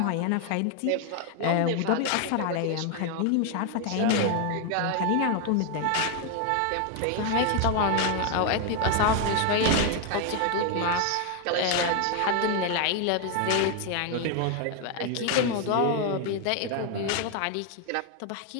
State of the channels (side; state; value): both; different; correlation 0.01